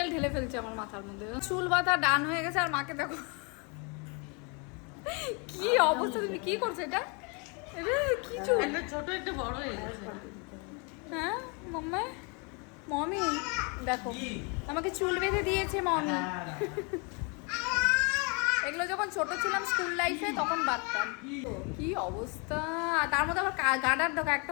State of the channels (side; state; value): right; quieter; 33.1 dB